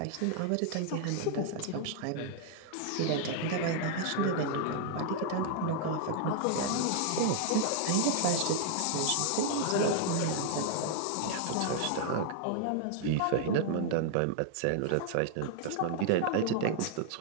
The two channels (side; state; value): both; different; correlation 0.00